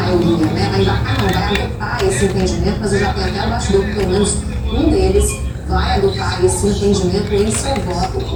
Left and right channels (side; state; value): both; identical; correlation 1.00